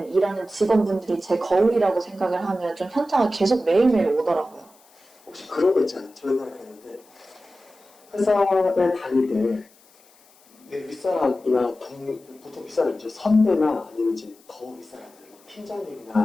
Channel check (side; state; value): left; noise; hiss, 29 dB below the sound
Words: 일하는 직원분들이 제 거울이라고 생각을 하면 좀 현타가 계속 매일매일 오더라고요. 혹시 그런 거 있잖아요. 저 옛날에 그랬는데 회사에 다닐 때 내 윗사람이나 보통 윗사람이죠. 선배나 아니면 이제 더 윗사람들,